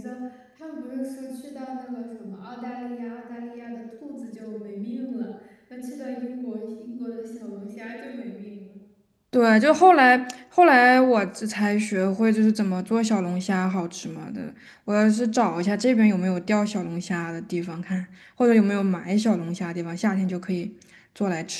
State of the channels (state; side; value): identical; both; correlation 1.00